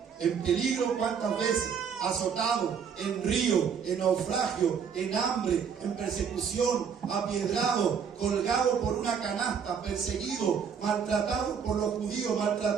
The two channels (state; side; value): quieter; left; 7.0 dB